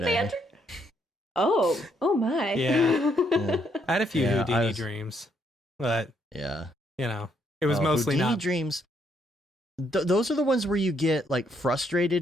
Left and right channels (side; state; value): both; normal; correlation 0.73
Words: Oh my. Yeah. I had a few Houdini dreams, but it was mostly Houdini not dreams. Those are the ones where you get like